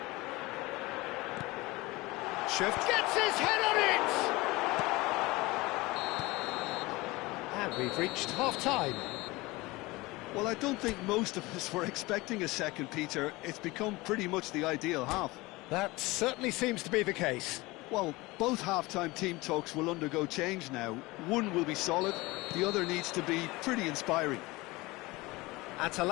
Gets his head on it! And we've reached half-time. Well, I don't think most of us were expecting a second, Peter. It's become pretty much the ideal half. That certainly seems to be the case. Well, both half-time team talks will undergo change now. One will be solid, the other needs to be pretty inspiring.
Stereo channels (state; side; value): quieter; right; 21.7 dB